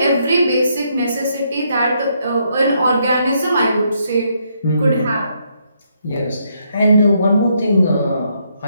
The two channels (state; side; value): inverted; both; correlation -0.75